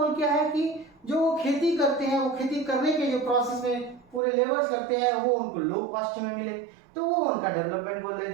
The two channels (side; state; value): left; drops out; at 4.2 s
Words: क्या है कि जो वो खेती करते हैं, वो खेती करने के जो प्रोसेस में पूरे लेबर्स लगते हैं वो उनको लो कॉस्ट में मिले, तो वो उनका डेवलपमेंट गोल है।